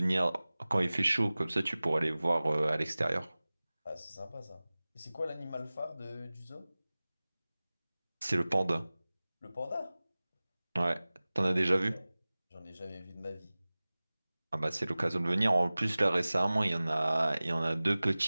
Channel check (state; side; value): inverted; both; correlation -0.98